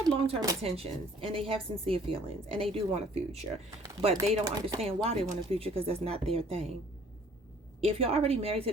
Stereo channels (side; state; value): both; normal; correlation 0.56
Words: long-term intentions and they have sincere feelings and they do want a future. But they don't understand why they want a future because that's not their thing. If you're already married to